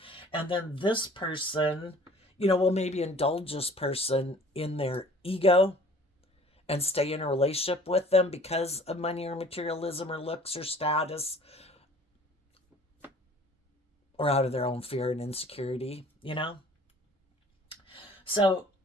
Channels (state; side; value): normal; both; correlation 0.51